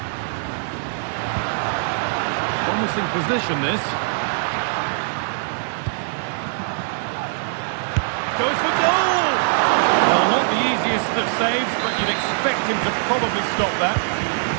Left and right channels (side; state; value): left; silent; digital silence